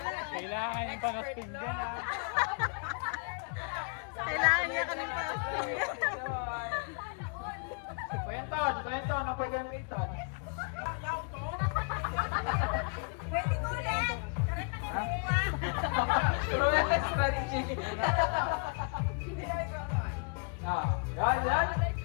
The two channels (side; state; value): right; quieter; 37.9 dB